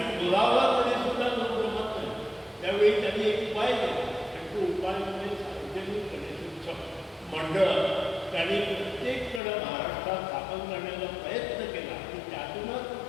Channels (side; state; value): right; drops out; at 9.4 s